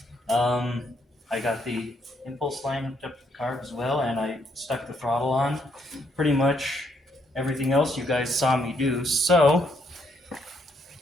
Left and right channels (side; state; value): both; normal; correlation 0.73